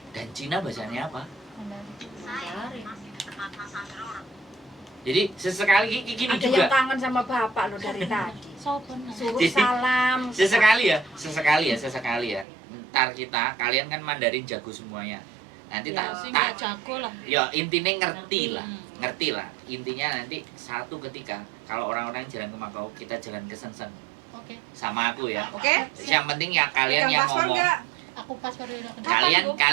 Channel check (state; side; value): drops out; left; at 12.5 s